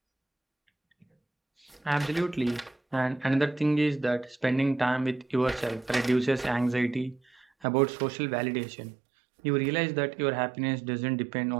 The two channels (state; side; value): drops out; left; at 7.5 s